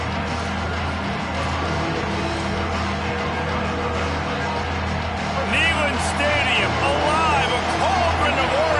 Stadium alive, a cauldron of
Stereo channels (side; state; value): both; identical; correlation 1.00